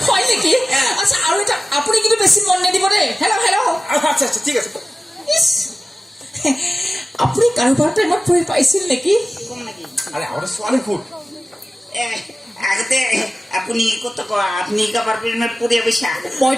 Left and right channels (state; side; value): normal; both; correlation 0.96